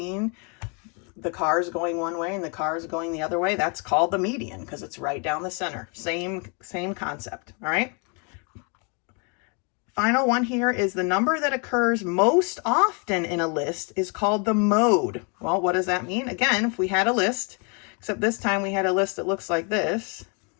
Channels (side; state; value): right; quieter; 34.9 dB